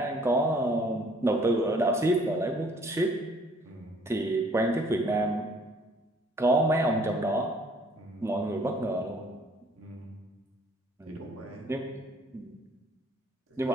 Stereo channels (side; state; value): both; normal; correlation 0.59